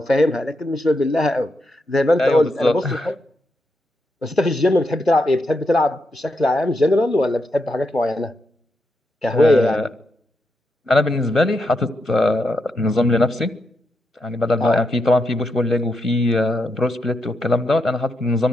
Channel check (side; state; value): both; normal; correlation 0.83